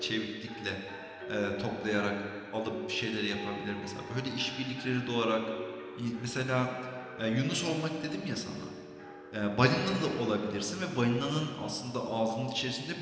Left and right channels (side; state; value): both; identical; correlation 1.00